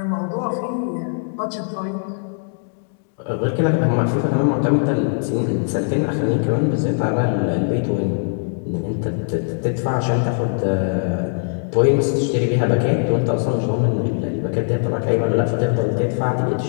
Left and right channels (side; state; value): right; silent; digital silence